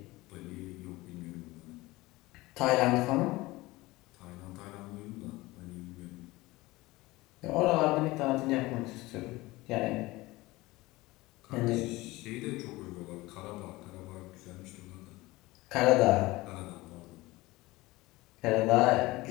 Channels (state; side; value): quieter; right; 20.3 dB